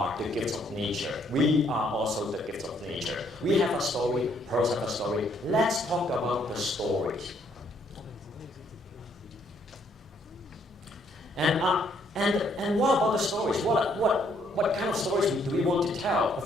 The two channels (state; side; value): normal; both; correlation 0.68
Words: the gifts of nature. We are also the gifts of nature. We have a story. Pearls have a story. Let's talk about the stories. And what about the stories? What kind of stories do we want to tell?